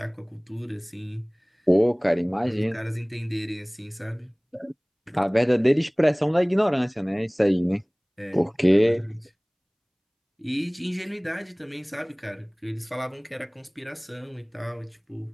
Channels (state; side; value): identical; both; correlation 1.00